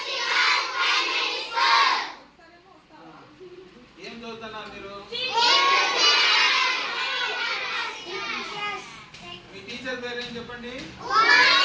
ఏం చదువుతున్నారు మీరు? మీ టీచర్ పేరు ఏం చెప్పండి?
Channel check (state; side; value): identical; both; correlation 1.00